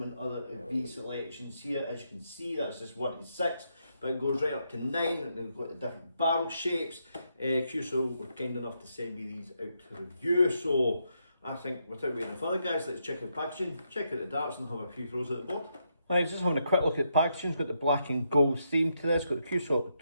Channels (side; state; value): both; inverted; correlation -0.80